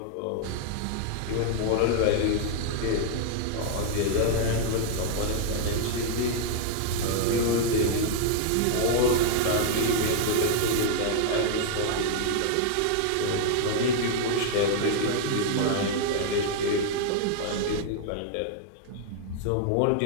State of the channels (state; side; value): different; both; correlation 0.00